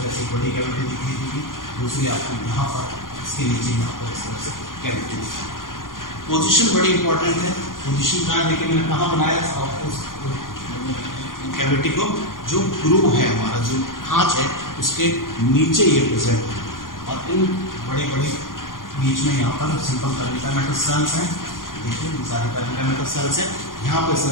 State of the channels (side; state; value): right; late; 0.90 ms